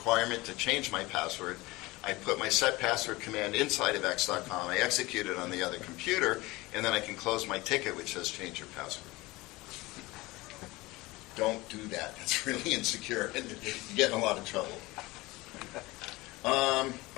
to change my password. I put my set password command inside of x.com, I execute it on the other computer, and then I can close my ticket which says change your password. Don't do that. That's really insecure and you get in a lot of trouble.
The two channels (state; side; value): quieter; right; 21.3 dB